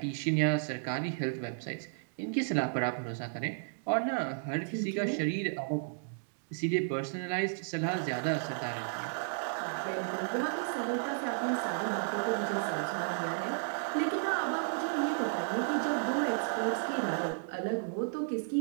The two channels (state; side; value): silent; left; digital silence